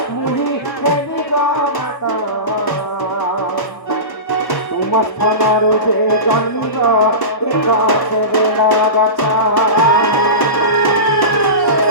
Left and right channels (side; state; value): right; late; 1.0 ms